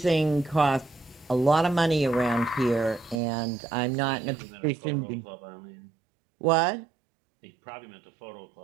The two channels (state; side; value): drops out; left; at 3.2 s